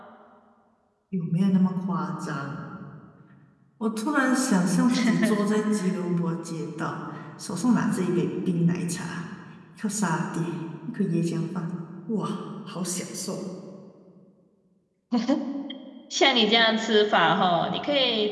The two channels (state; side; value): identical; both; correlation 1.00